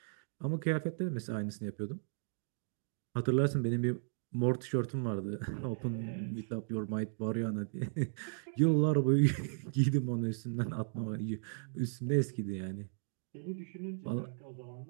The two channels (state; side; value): silent; left; digital silence